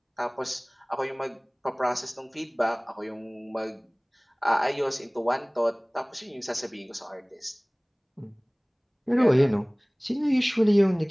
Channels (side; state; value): both; identical; correlation 1.00